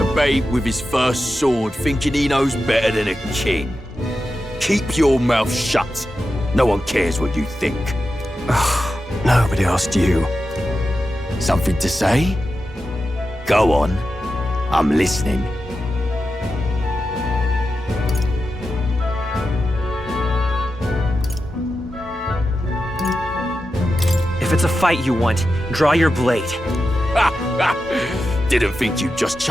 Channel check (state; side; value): normal; both; correlation 0.90